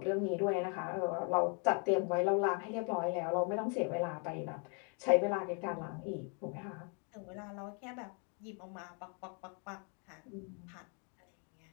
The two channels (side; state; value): right; quieter; 38.0 dB